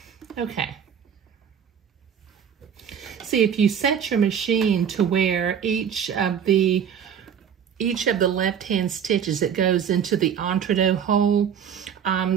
Okay. See, if you set your machine to where each of the left-hand stitches that goes into the entre-deux hole,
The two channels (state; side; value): quieter; left; 8.0 dB